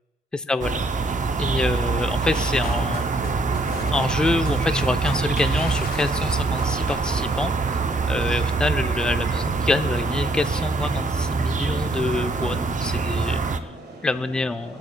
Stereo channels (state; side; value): normal; both; correlation 0.67